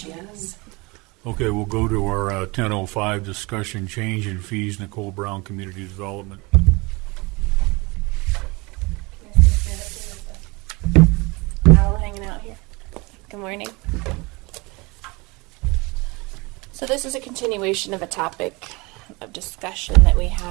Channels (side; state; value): left; quieter; 25.5 dB